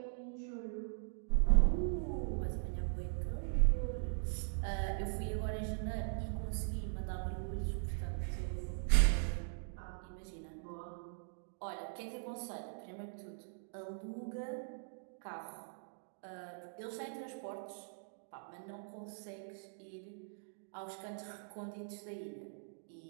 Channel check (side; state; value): left; silent; digital silence